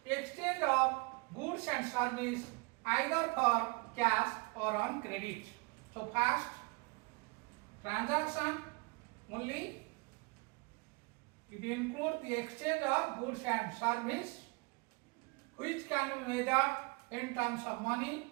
exchange of goods and service either for cash or on credit. So, first, transaction only, it includes the exchange of goods and service which can be measured in terms of money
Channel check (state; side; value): quieter; left; 28.3 dB